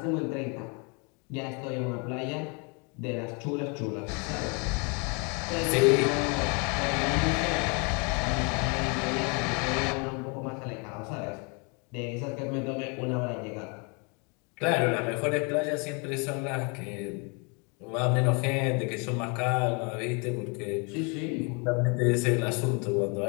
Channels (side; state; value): right; quieter; 33.3 dB